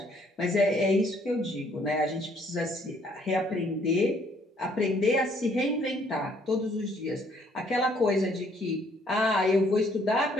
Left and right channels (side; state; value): both; normal; correlation 0.65